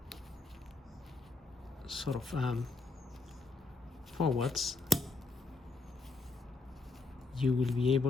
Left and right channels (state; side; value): quieter; right; 3.5 dB